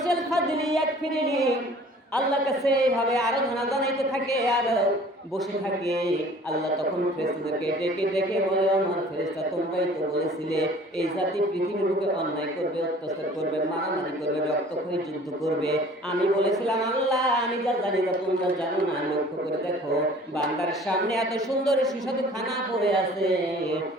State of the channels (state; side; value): normal; both; correlation 0.50